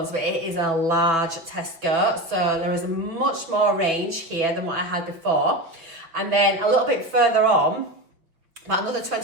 but it is a large Tesco. So there is a much more range here than what I had before. And then a little bit further on, about another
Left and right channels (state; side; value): late; left; 5.8 ms